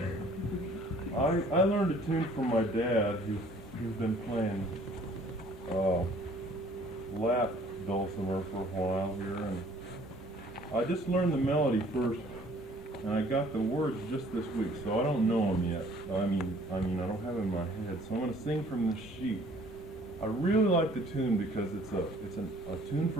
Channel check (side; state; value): both; normal; correlation 0.56